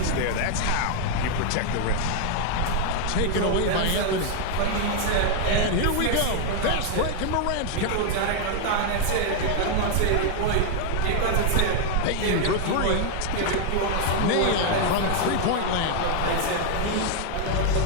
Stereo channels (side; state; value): both; different; correlation 0.00